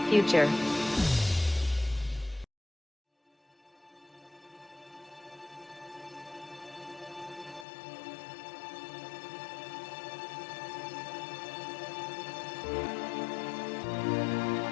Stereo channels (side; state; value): right; drops out; at 7.7 s